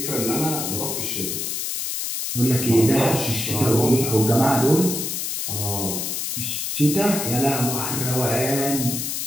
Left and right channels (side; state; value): left; noise; hiss, 3 dB below the sound